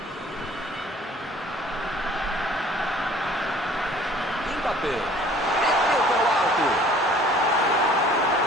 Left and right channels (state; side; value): normal; both; correlation 0.52